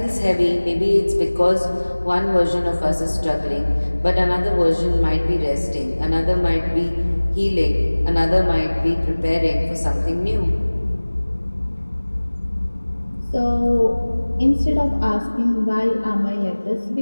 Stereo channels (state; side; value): inverted; both; correlation -1.00